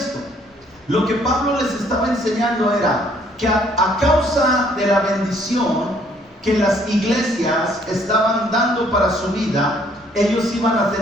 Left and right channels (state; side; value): normal; both; correlation 0.64